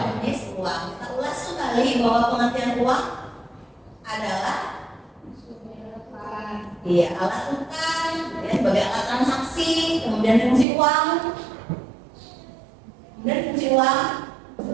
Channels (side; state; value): left; drops out; at 10.7 s